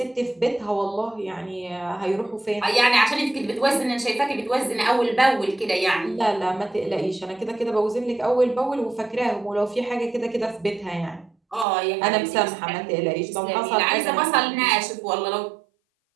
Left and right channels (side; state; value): left; drops out; at 11.7 s